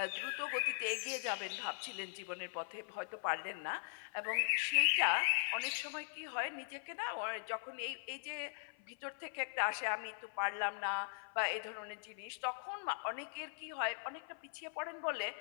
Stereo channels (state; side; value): silent; right; 51 dB below the other